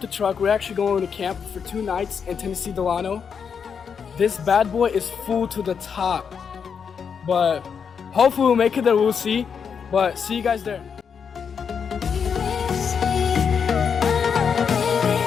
truck. We're actually going to camp for 2 nights in Tennessee Delano. This bad boy is full to the top, but hopefully we'll make it there. We'll see. But see you guys there.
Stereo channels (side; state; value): right; quieter; 6.7 dB